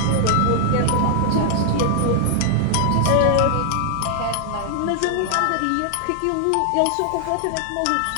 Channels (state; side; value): different; both; correlation -0.01